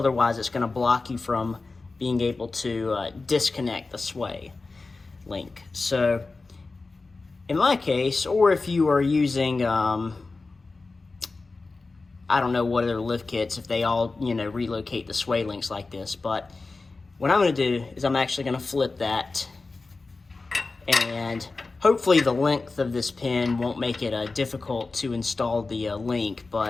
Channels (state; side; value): quieter; right; 3.7 dB